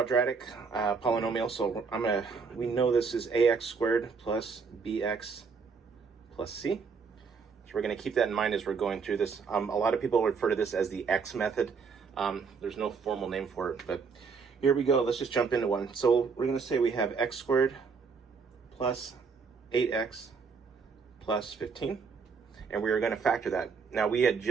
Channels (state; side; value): quieter; left; 5.3 dB